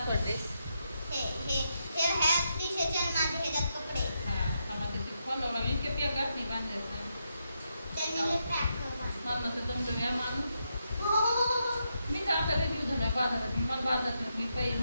ड्रेस. मी तर आता रिव्ह्यू झाला बाजारात. मला बाजारात मी काही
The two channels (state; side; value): inverted; both; correlation -0.82